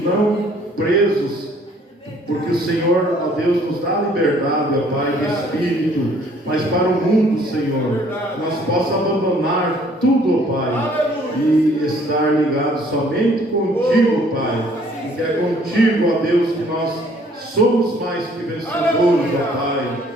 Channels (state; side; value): normal; both; correlation 0.59